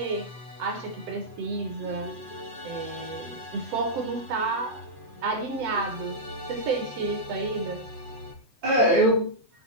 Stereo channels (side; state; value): left; late; 7.8 ms